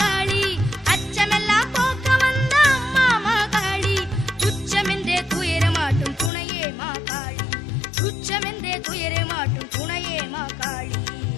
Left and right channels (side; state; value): right; drops out; at 6.3 s